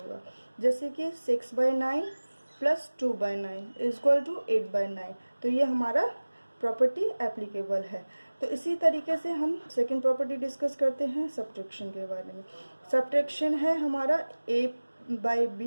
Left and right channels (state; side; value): inverted; both; correlation -1.00